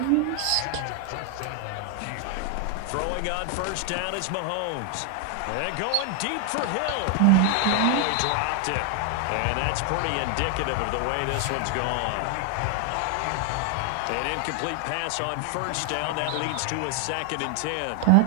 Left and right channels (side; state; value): both; different; correlation 0.00